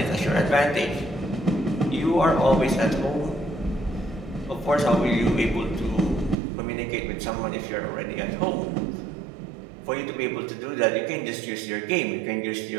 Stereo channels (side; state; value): left; drops out; at 6.4 s